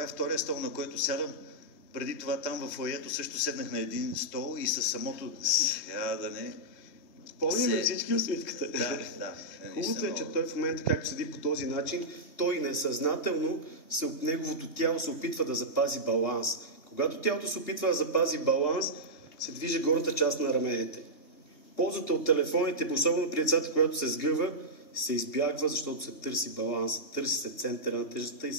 е втория стол, на който сядам. Преди това там в фоайето също седнах на един стол и със самото... Сега да не... Помним всички усмивката. Да. Хубавото е, че той в момента, както седи по този начин, той несъзнателно, неговото тяло се опитва да запази баланс. Когато тялото се опитва да запази баланс, се движи горната част на раменете. Ползата от телефоните, особено при децата, когато се сгъва, се избягва, защото се търси баланс, търси се центъра на тежестта и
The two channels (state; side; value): late; right; 3.2 ms